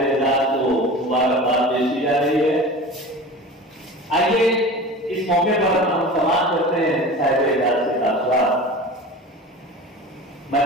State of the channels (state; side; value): normal; both; correlation 0.35